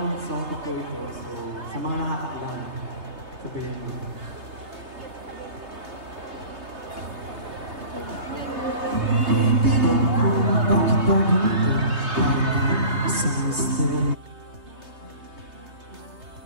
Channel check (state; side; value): late; left; 3.3 ms